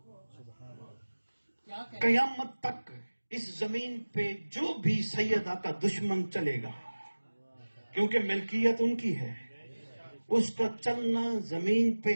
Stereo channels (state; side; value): inverted; both; correlation -1.00